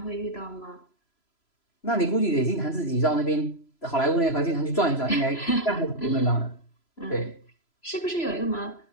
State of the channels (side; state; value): right; late; 3.0 ms